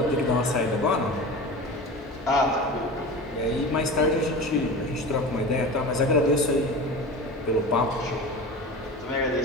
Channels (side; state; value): both; normal; correlation 0.31